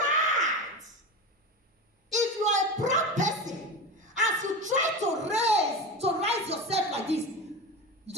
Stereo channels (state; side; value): normal; both; correlation 0.24